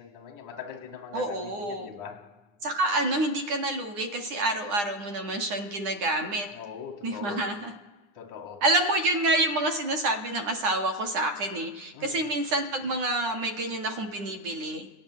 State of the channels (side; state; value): left; late; 9.8 ms